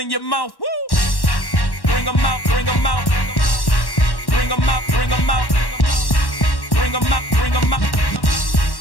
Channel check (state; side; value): late; right; 1.1 ms